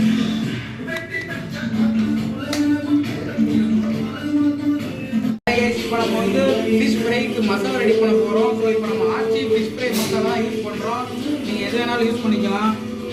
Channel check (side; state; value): both; identical; correlation 1.00